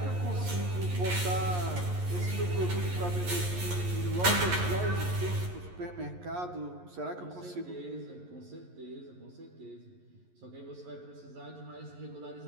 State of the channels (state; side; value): late; left; 11 ms